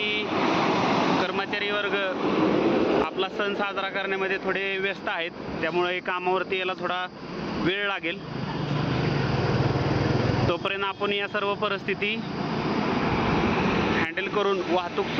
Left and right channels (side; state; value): both; identical; correlation 1.00